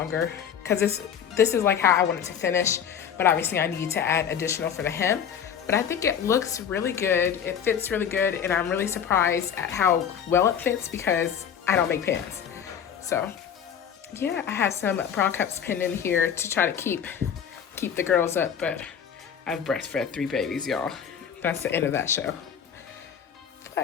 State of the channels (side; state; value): right; quieter; 8.2 dB